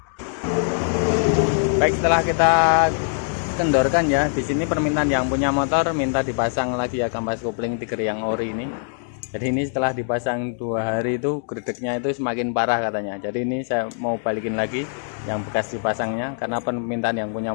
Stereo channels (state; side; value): silent; right; digital silence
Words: Baik, setelah kita kendorkan ya, di sini permintaan yang punya motor minta dipasang lagi ya kampas kopling Tiger yang ori ini. Jadi ini setelah dipasang 2 hari itu gredegnya itu semakin parah katanya. Jadi ini saya mau balikin lagi yang bekas dipasangnya karena permintaan yang punya